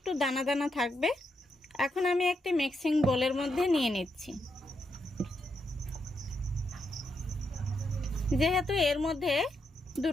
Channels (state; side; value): normal; both; correlation 0.81